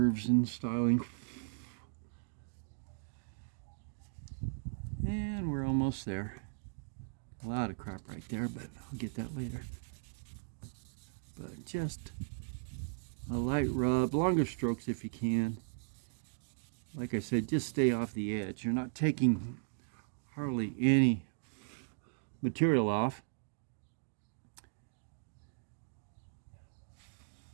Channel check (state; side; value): silent; left; digital silence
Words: and styling. And we're almost there. A lot of crap right there, but I'll get that later. But just a light rub, longer strokes if you can. Like I said, just stay off the edge. You're not taking hardly any material off.